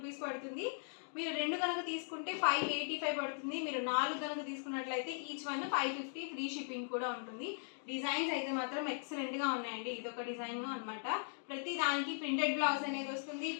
పడుతుంది. మీరు 2 కనుక తీసుకుంటే 585 పడుతుంది. మీరు 4 కనుక తీసుకున్నట్లయితే ఈచ్ వన్ 550 ఫ్రీ షిప్పింగ్ కూడా ఉంటుంది. డిజైన్స్ అయితే మాత్రం ఎక్సలెంట్ గా ఉన్నాయండి. ఇదొక డిజైన్ అన్నమాట. ప్రతి దానికి ప్రింటెడ్ బ్లౌజ్ అనేది వస్తుంది.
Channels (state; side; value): silent; right; digital silence